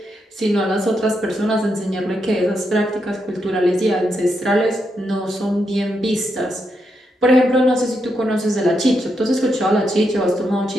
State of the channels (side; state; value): both; normal; correlation 0.82